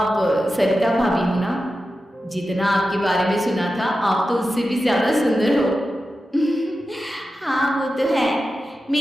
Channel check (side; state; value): both; normal; correlation 0.92